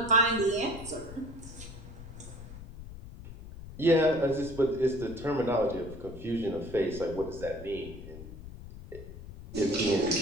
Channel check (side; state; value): left; noise; rumble, 14 dB below the sound